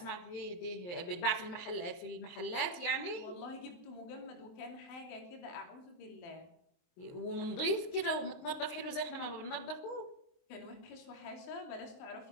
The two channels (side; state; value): right; late; 23 ms